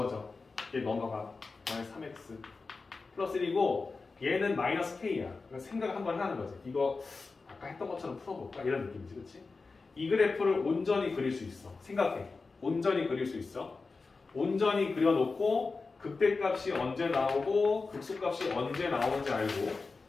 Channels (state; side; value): quieter; right; 4.1 dB